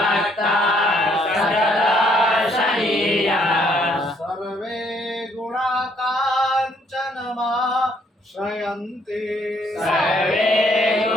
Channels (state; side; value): normal; both; correlation 0.67